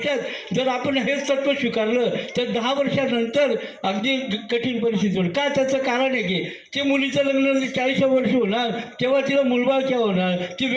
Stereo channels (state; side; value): identical; both; correlation 1.00